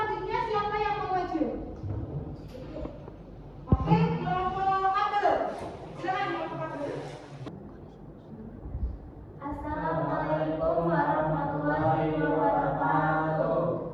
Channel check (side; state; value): both; identical; correlation 1.00